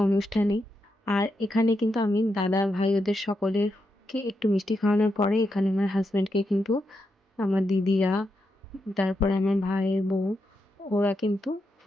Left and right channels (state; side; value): normal; both; correlation 0.84